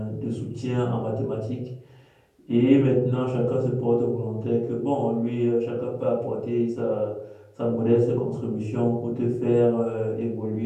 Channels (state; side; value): identical; both; correlation 1.00